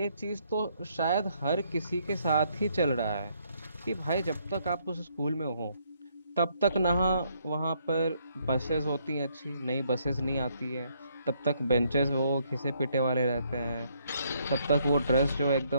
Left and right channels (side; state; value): both; inverted; correlation -0.70